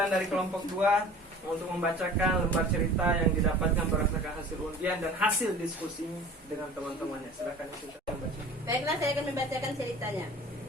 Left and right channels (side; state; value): both; normal; correlation 0.42